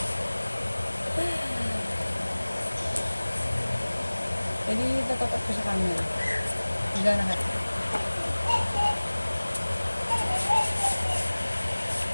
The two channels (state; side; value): inverted; both; correlation -1.00